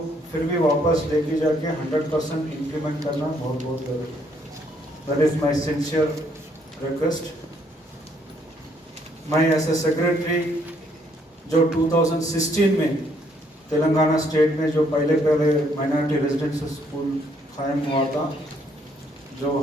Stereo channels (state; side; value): normal; both; correlation 0.69